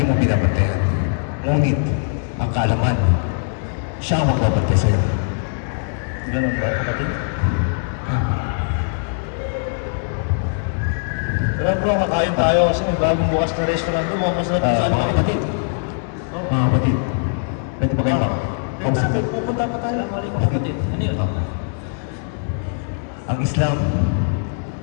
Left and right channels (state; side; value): silent; right; 65 dB below the other